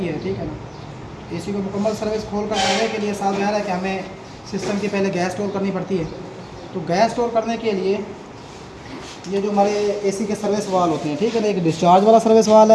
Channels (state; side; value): identical; both; correlation 1.00